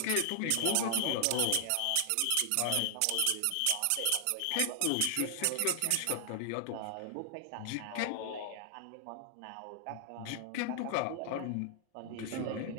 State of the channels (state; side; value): different; both; correlation 0.00